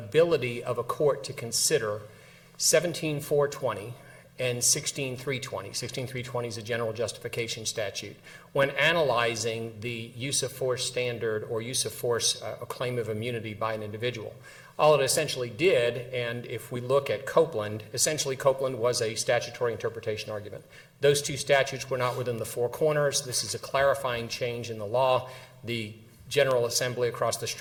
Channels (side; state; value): both; identical; correlation 1.00